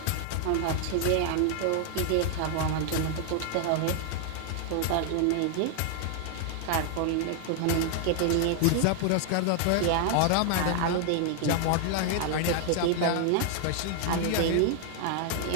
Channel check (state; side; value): different; both; correlation 0.00